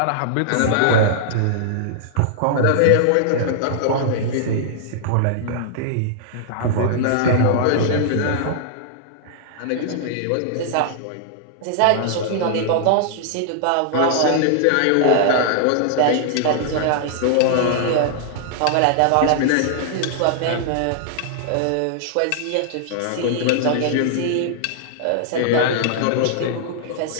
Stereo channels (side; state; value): both; different; correlation -0.01